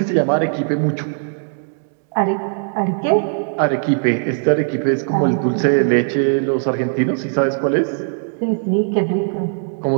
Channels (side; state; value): left; silent; digital silence